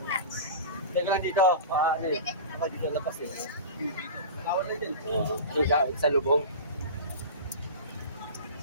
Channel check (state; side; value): inverted; both; correlation -0.31